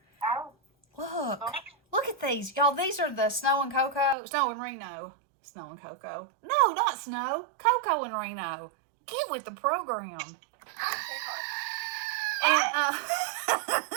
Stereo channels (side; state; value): left; drops out; at 4.2 s